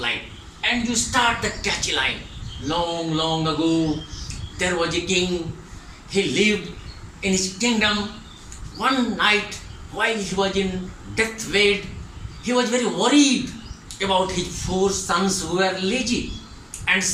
and you start the catchy line. Long, long ago, there was a king. He lived in his kingdom. One night, while he was in deathbed, he was very worried about his 4 sons who were lazy. And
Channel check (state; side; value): identical; both; correlation 1.00